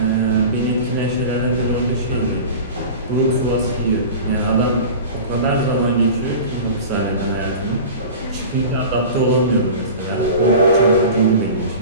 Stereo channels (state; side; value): inverted; both; correlation -0.35